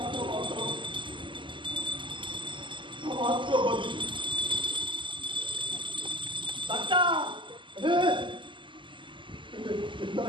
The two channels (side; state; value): left; late; 0.24 ms